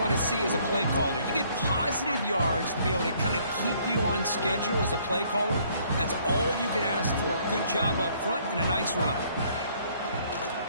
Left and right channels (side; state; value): both; inverted; correlation -0.63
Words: to see as a play caller. You get positive yards to be able to kind of keep you on schedule as a play caller. That's all you can ask for. Good job up front and a nice run.